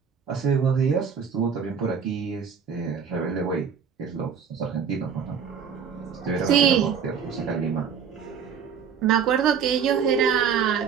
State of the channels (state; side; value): quieter; left; 7.0 dB